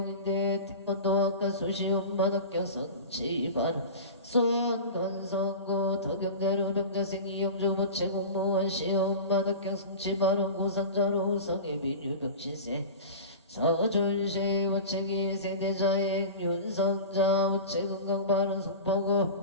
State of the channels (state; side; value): inverted; both; correlation -0.32